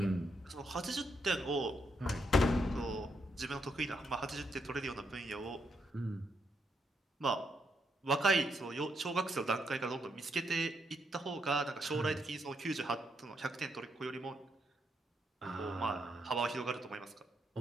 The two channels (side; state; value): both; normal; correlation 0.78